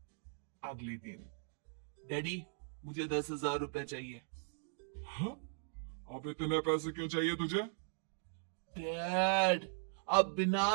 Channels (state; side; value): silent; left; digital silence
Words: दिन, डैडी मुझे 10,000 रुपए चाहिए। हाँ? अब इतने पैसे क्यों चाहिए तुझे? डैड अब